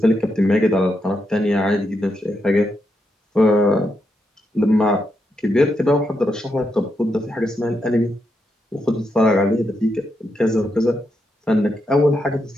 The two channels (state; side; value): normal; both; correlation 0.82